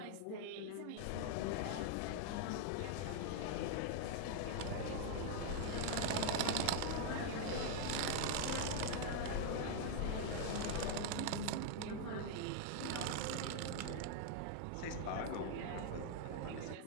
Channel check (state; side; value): different; both; correlation 0.00